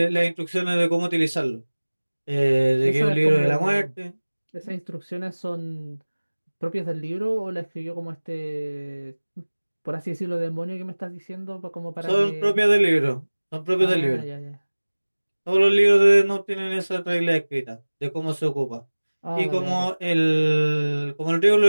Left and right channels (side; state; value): both; inverted; correlation -1.00